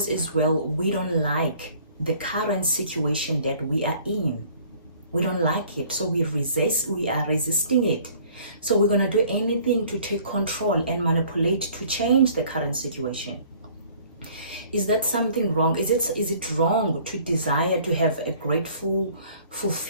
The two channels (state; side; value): inverted; both; correlation -0.55